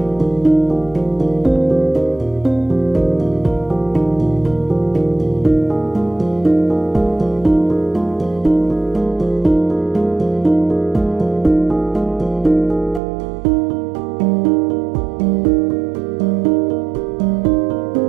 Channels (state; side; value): drops out; left; at 13.0 s